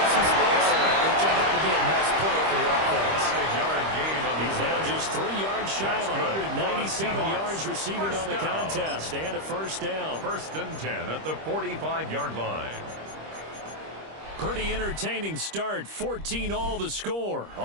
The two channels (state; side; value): late; left; 25 ms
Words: some space. It turned out to be a nice play for the offense. 5-yard gain on the He's now just 3 yards shy of 197 yards receiving on the contest. And a first down. 1st and 10 at the 45-yard line. Pretty entertaining start. 14-all the score